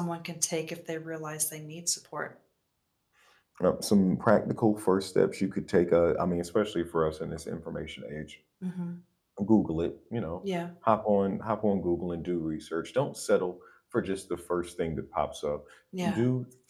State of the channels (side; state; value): both; identical; correlation 1.00